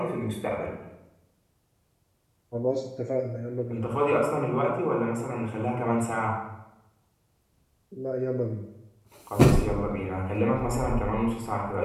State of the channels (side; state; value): both; identical; correlation 1.00